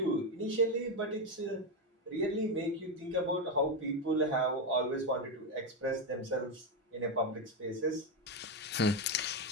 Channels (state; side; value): normal; both; correlation 0.09